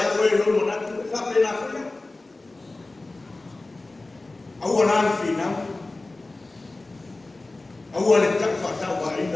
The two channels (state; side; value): quieter; right; 3.1 dB